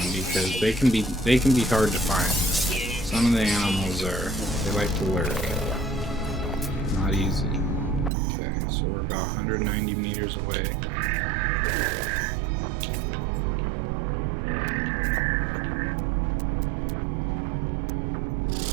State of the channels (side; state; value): left; drops out; at 8.1 s